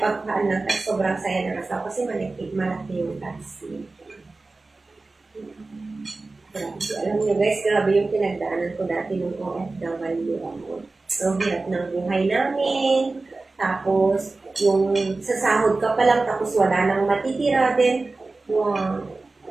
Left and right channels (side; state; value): left; quieter; 3.4 dB